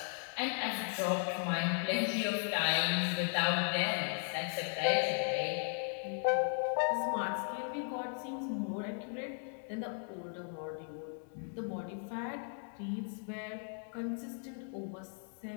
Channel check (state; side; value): silent; right; 53 dB below the other